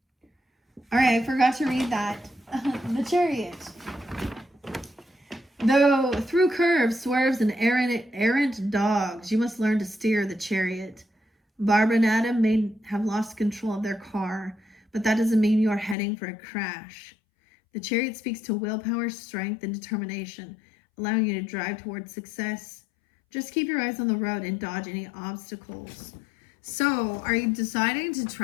All right, I forgot to read that. The Chariot. Though through curves, swerves, and errant dogs, you must learn to steer the chariot. Barbara and Adam may have lost control of their car, but that doesn't mean you are heading for a crash. The chariot speaks to willpower, strength, and determination, allowing you to drive towards success. Just keep your eyes on the road and dodge any obstacles. So, are you deciding to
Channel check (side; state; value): right; drops out; at 16.0 s